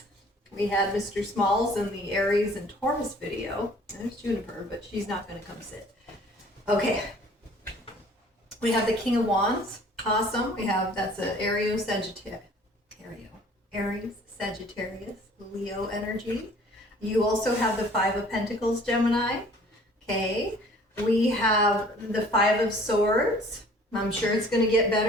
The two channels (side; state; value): both; normal; correlation 0.52